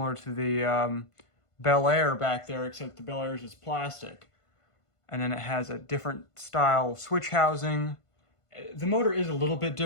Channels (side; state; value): right; late; 1.5 ms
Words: to the Bel Air back there, except the Bel Air is just plastic. And then it has a different style switch housing. The motor is a little bit